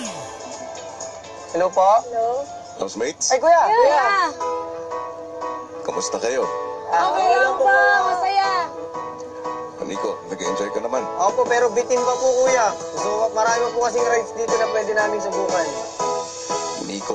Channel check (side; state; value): both; identical; correlation 1.00